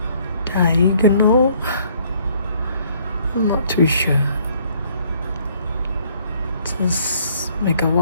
diagonal, I'm not too sure. Just make a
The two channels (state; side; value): inverted; both; correlation -0.64